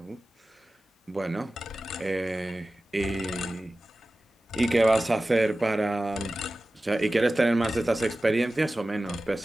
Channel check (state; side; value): normal; both; correlation 0.96